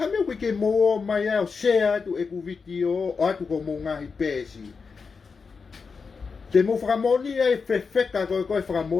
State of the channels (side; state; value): right; quieter; 5.1 dB